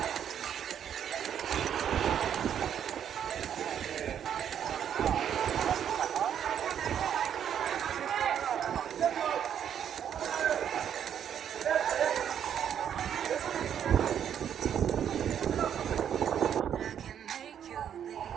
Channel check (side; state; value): left; quieter; 9.1 dB